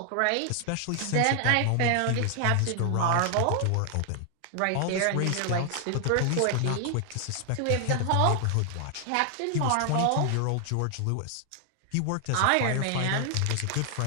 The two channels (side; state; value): both; different; correlation 0.00